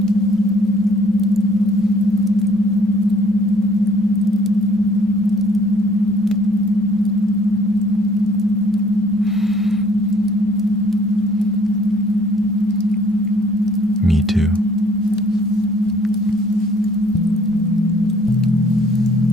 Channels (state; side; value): normal; both; correlation 0.59